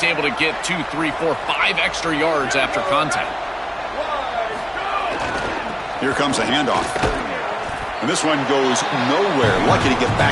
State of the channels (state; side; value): identical; both; correlation 1.00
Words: able to get 2, 3, 4, 5 extra yards after contact. Here comes a handoff. And this one goes nowhere. Lucky to get